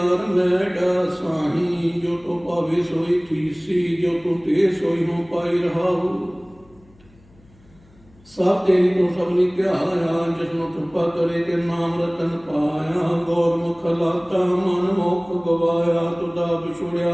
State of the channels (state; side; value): noise; left; hum, 29 dB below the sound